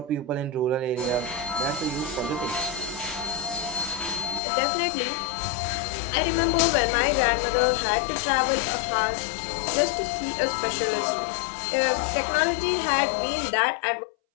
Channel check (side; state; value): right; drops out; at 4.4 s